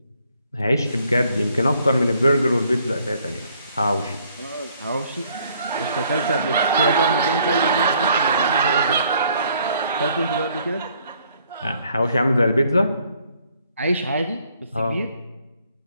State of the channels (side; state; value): both; inverted; correlation -0.65